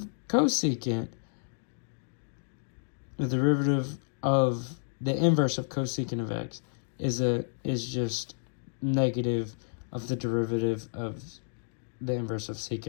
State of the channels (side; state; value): right; silent; digital silence